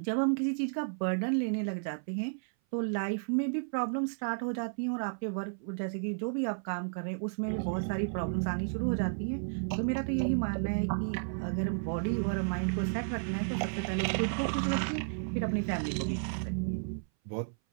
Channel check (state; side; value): silent; left; 56 dB below the other